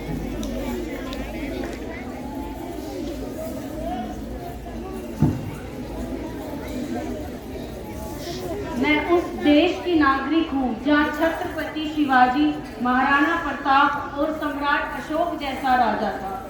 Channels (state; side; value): identical; both; correlation 1.00